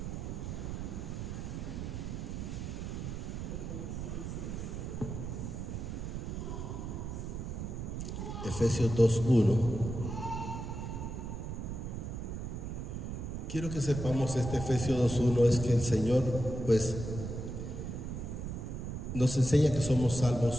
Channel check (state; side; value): noise; right; rumble, 5 dB below the sound